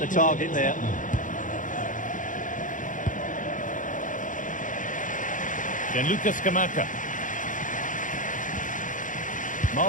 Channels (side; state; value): right; late; 0.38 ms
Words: target there. Gianluca Scamacca.